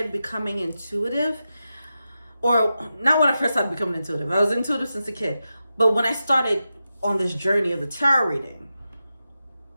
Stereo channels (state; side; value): inverted; both; correlation -0.90